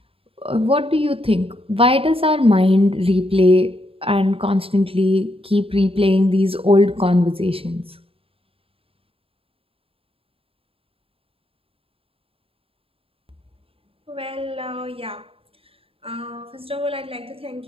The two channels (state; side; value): late; left; 0.27 ms